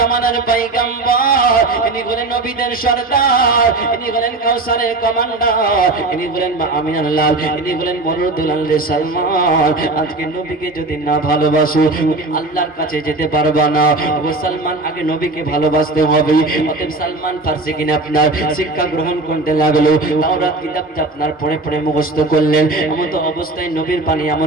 পয়গম্বর, ইনি হলেন নবীদের সরদার, ইনি হলেন কাউসারের কমান্ডার, ইনি হলেন মা আমিনার লাল, ইনি হলেন মরুদুল আল সালমান। আজকে নবীকে যদি না ভালোবাসো, তুমি আল্লাহর কাছে যেতে পারবা না। ও সালমান, আগে নবীকে ভালোবাসতে হবে। অতএব সালমান ফার্সি কিনে আপনার শিক্ষা গ্রহণ করতে লাগলো। তাওরাত কিতাবটা আপনার পড়ে পড়ে মুখস্থ করলেন। এমন তো অবস্থায় নবীর পানি,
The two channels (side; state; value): left; quieter; 3.0 dB